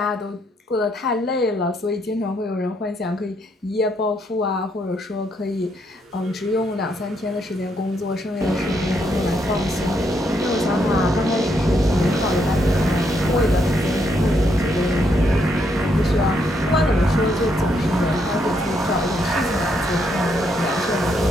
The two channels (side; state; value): both; normal; correlation 0.76